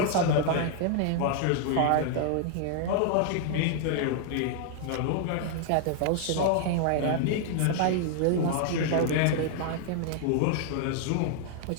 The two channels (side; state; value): both; different; correlation 0.00